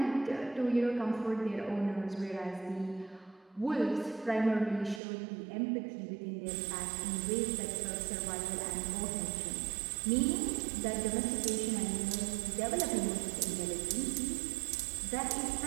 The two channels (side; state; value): left; drops out; at 5.0 s